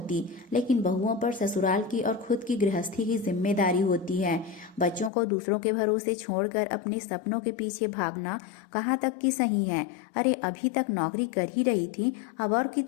लेकिन बहुओं पर ससुराल की और खुद की गृहस्थी की जिम्मेदारी होती है। बच्चों को दूसरों के भरोसे छोड़कर अपने सपनों के पीछे भागना कहाँ तक की सही है? अरे अभी तक नौकरी कर ही रही थी, अब और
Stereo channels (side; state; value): right; drops out; at 5.1 s